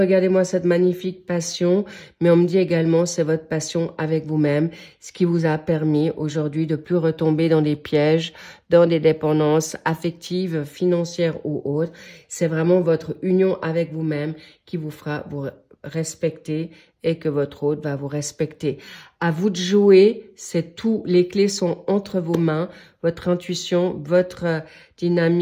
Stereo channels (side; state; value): both; identical; correlation 1.00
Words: cette magnifique passion, mais on me dit également c'est votre passion avec vous-même, ce qui vous a permis aujourd'hui de plus retomber dans des pièges, dans des dépendances affectives, financières ou autres. C'est vraiment votre union avec vous-même qui vous fera vous respecter et que votre autre va vous respecter. À vous de jouer, c'est tout. Les clés sont entre vos mains. Votre intuition, votre